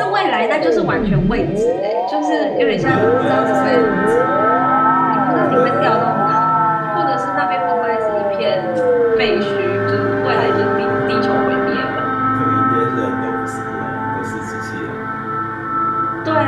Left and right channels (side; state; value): both; identical; correlation 1.00